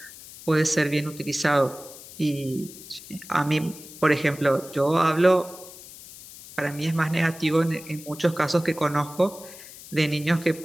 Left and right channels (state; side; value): noise; left; hiss, 17 dB below the sound